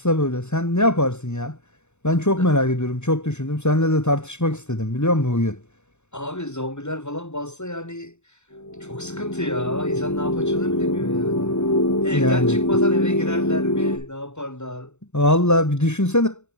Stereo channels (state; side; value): late; right; 0.82 ms